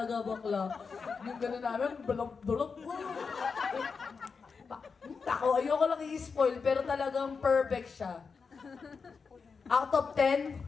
bakla. Yung gano'n namin, balok-balok. Ako, ayoko lang i-spoil, pero talagang perfect siya. Out of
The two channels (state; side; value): quieter; right; 5.2 dB